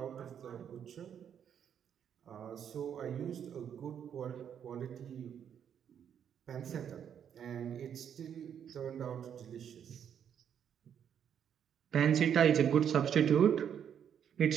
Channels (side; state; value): left; quieter; 8.6 dB